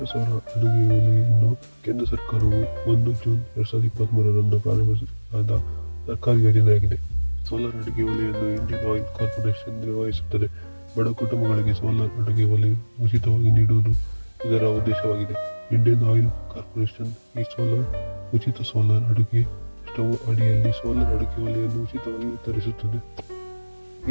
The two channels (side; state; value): both; inverted; correlation -1.00